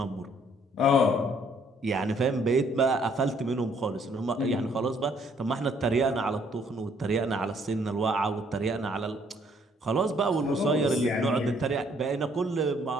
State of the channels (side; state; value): both; normal; correlation 0.65